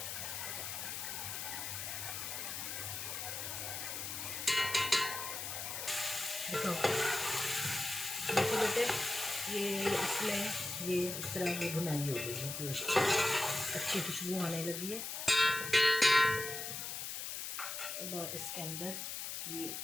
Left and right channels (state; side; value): noise; left; hiss, 5 dB below the sound